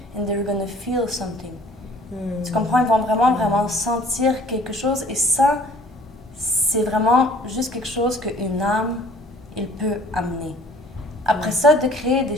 and they're gonna feel something. Tu comprends? Ils vont vraiment sentir quelque chose. Et ça, c'est vraiment juste quelque chose qu'une âme, il peut amener. Après ça, de créer des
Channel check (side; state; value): both; normal; correlation 0.53